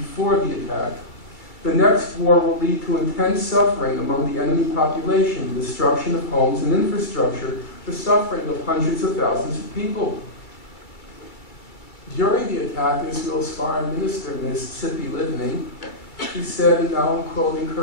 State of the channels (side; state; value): right; late; 2.3 ms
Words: the attack, "The next war will lead to intense suffering among the enemy population, the destruction of homes and infrastructure, the suffering of hundreds of thousands of people." During the attack, Israel's foreign minister, Mississippi Livni, he said, and now I'm quoting